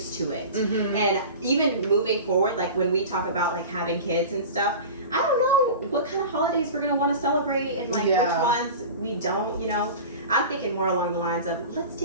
to it. And even moving forward, like when we talk about like having kids and stuff, I don't know what kind of holidays we're going to want to celebrate and like which ones we don't, you know. I'm thinking more along the lines of let's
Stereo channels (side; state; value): both; inverted; correlation -0.34